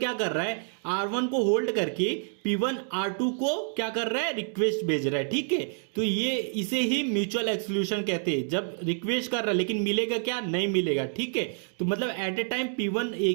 कर रहा है, R1 को होल्ड करके P1 R2 को क्या कर रहा है, रिक्वेस्ट भेज रहा है। ठीक है, तो ये इसे ही म्यूचुअल एक्सक्लूशन कहते हैं। जब रिक्वेस्ट कर रहा है लेकिन मिलेगा क्या, नहीं मिलेगा। ठीक है, तो मतलब एट ए टाइम P1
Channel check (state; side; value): silent; left; 59 dB below the other